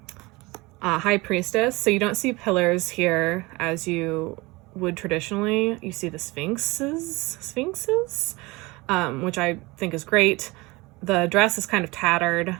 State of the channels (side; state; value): left; quieter; 23.2 dB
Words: High Priestess. So you don't see pillars here as you would traditionally. You see the sphinxes, which I think is great. The dress is kind of tattered,